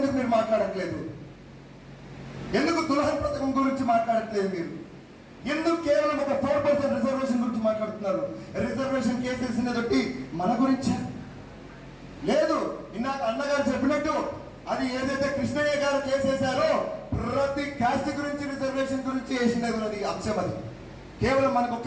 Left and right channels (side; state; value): both; identical; correlation 1.00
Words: మీరు మాట్లాడట్లేదు? ఎందుకు దుల్హన్ పథకం గురించి మాట్లాడట్లేదు మీరు? ఎందుకు కేవలం ఒక 4% రిజర్వేషన్ గురించి మాట్లాడుతున్నారు? రిజర్వేషన్ కేసెస్ తోటి మన గురించి లేదు. ఇందాక అన్నగారు చెప్పినట్టు అది ఏదైతే కృష్ణయ్య గారు కేసేశారో ప్రతి కాస్ట్ గురించి రిజర్వేషన్ గురించి వేసినది అంశం. అది కేవలం మనకు